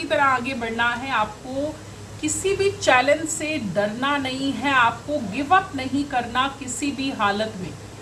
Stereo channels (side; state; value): both; identical; correlation 1.00